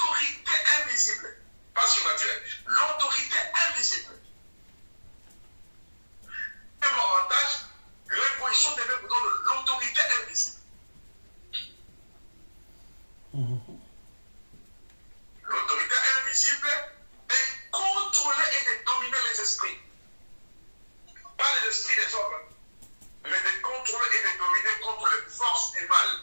invisible, pas surnaturelle, l'autorité invisible. Même avantage, l'imposition des mains vous donne l'autorité invisible. L'autorité invisible de contrôler et de dominer les esprits. Pas les esprits des hommes, mais de contrôler et de dominer contre les forces du mal.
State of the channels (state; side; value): inverted; both; correlation -1.00